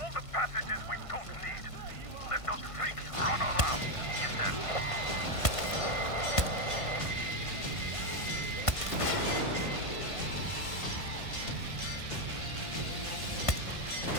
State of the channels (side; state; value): right; late; 1.5 ms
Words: the passages we don't need. Let those freaks run around. Get them!